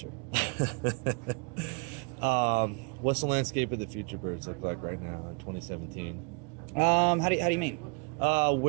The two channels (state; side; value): quieter; left; 33.9 dB